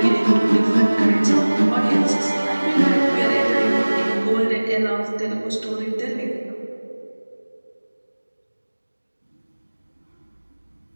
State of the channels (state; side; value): inverted; both; correlation -1.00